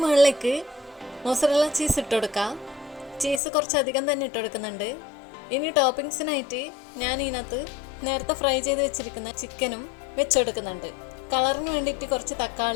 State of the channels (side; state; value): right; drops out; at 3.4 s